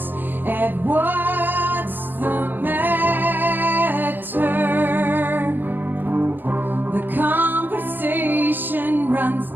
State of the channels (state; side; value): late; left; 0.092 ms